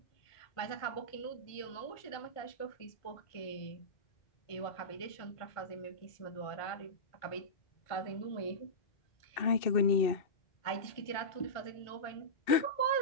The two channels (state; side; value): late; right; 1.5 ms